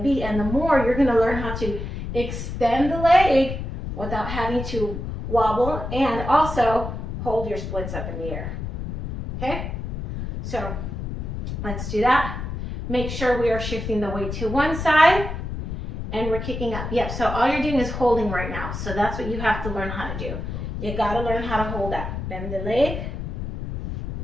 be. And the more you're going to learn how to extend the leg without having to wobble and also hold your splits up in the air. Okay? So let's do that. Make sure we are shifting the weight to one side and we're kicking up. Yep, so all you're doing is holding right now. So that's what you have to learn how to do. You gotta learn how to hold that. Bend the leg.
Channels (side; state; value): left; noise; rumble, 6 dB below the sound